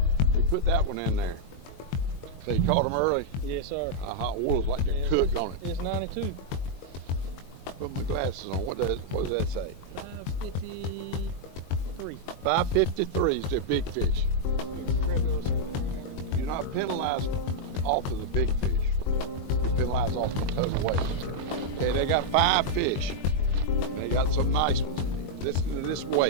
You put that one in there. So you caught him early? Yes, sir. Hot oil's like they're cooked on it. It's 92. Put my glasses on. What does that say? 553. 553 is the big fish. You're not penalized off of the big fish. You're penalized off the total weight. Okay, they got 5 fish. They got some nice ones. Listen to this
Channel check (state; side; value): late; right; 22 ms